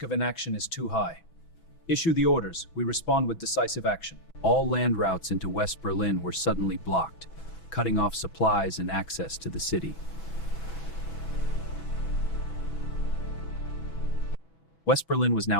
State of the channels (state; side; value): late; right; 6.1 ms